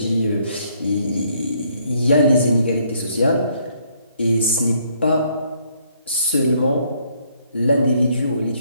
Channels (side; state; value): both; inverted; correlation -0.68